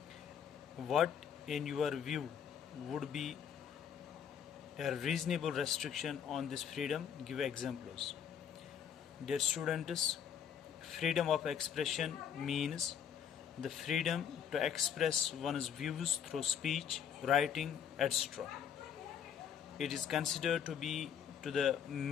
What in your view would be a reasonable restriction on this freedom? Give examples. Dear students, freedom of expression means the freedom to express one's views through speech, writing, etc. It is considered to be to the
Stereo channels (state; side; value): quieter; right; 8.3 dB